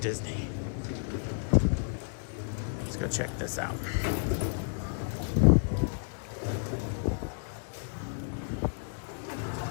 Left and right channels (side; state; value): right; silent; digital silence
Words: Disney. Let's go check this out.